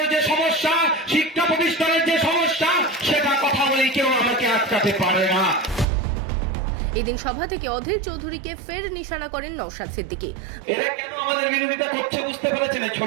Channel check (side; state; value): left; drops out; at 5.9 s